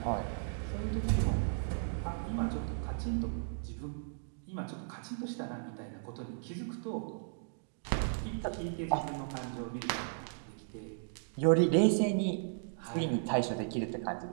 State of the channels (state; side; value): silent; left; digital silence